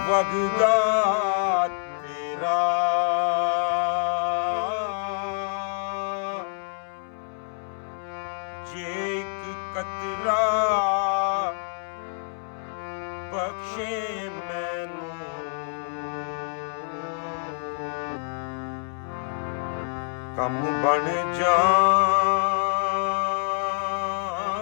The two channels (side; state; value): right; silent; 60 dB below the other